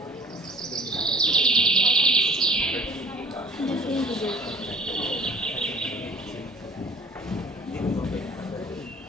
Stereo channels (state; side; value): normal; both; correlation 0.49